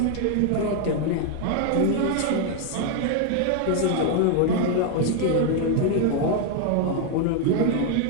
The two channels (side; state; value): both; different; correlation 0.00